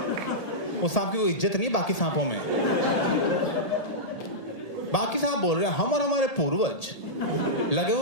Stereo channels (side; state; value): right; late; 1.8 ms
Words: वो सांप की कोई इज्जत नहीं बाकी सांपों में। बाकी सांप बोल रहे हैं हम और हमारे पूर्वज लगे